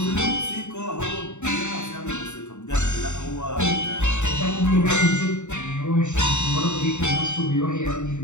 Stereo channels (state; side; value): late; right; 0.84 ms